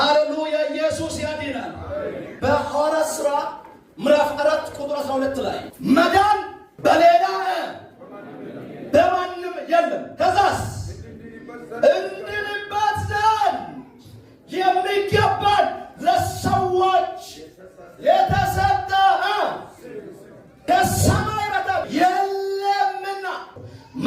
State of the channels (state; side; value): identical; both; correlation 1.00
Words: ኢየሱስ ያድናል። በሐዋርያት ሥራ ምዕራፍ 4 ቁጥር 12 ላይ መዳን በሌላ በማንም የለም። ከዛስ እንድንበት ዘንድ የሚገባን ለሰዎች የተሰጠ ከሰማይ በታች የለምና።